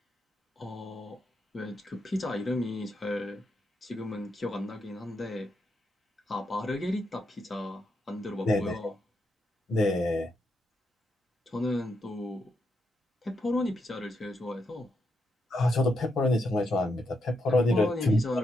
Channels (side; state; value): both; normal; correlation 0.82